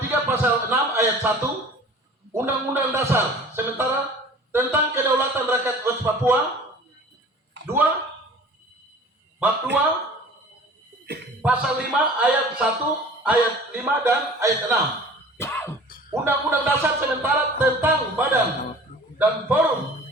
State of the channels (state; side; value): normal; both; correlation 0.44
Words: 3 pasal 6 ayat 1 Undang-Undang Dasar sementara tentang kedaulatan rakyat West Papua 2 bab 2 pasal 5 ayat 1 ayat 5 dan ayat 6 Undang-Undang Dasar sementara tentang badan dan forum